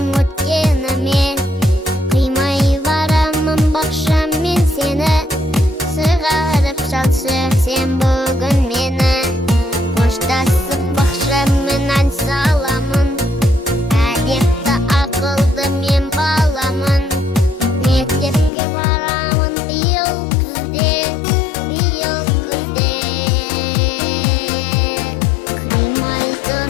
өткеніме, қимай барамын бақшам мен сені, сығарып шалшы сен бүгін мені. Қоштасып бақшаммен ән саламын, әдепті ақылды мен баламын. Мектепке барамын биыл күзде, биыл күзде. Қимай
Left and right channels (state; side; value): drops out; right; at 18.5 s